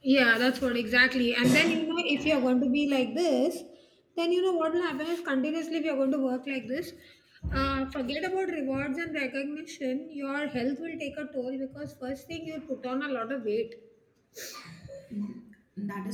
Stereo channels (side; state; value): both; identical; correlation 1.00